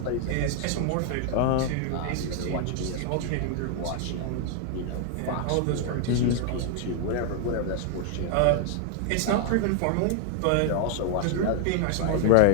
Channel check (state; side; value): different; both; correlation 0.00